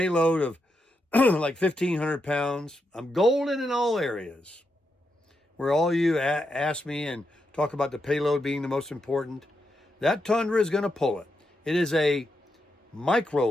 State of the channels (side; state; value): both; normal; correlation 0.84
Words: of like 1,500 pounds. I'm golden in all areas. Where all you ask me and talk about the payload being the most important, that Tundra is going to pull it. It is a